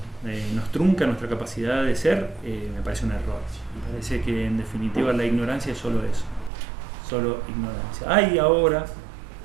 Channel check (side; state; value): left; drops out; at 6.5 s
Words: nos trunca nuestra capacidad de ser, me parece un error. Me parece que en definitiva la ignorancia es solo eso, solo ignorancia. Hay ahora,